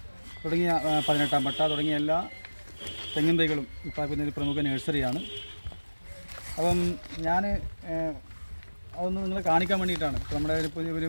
തുടങ്ങിയ 18-ാം പട്ട തുടങ്ങിയ എല്ലാ തെങ്ങിൻ തൈകളും ഉൽപ്പാദിപ്പിക്കുന്ന ഒരു പ്രമുഖ നഴ്സറിയാണ്. അപ്പം ഞാൻ അതൊന്ന് നിങ്ങളെ കാണിക്കാൻ വേണ്ടിയിട്ടാണ്.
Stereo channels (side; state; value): both; inverted; correlation -1.00